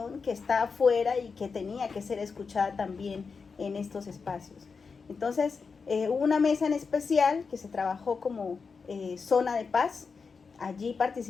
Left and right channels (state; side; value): quieter; right; 5.1 dB